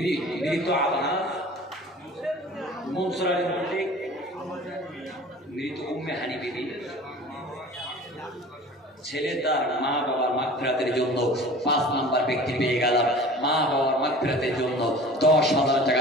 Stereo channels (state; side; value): normal; both; correlation 0.42